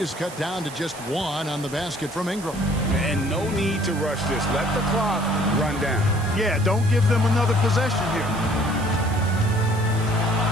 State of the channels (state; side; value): noise; right; hiss, 16 dB below the sound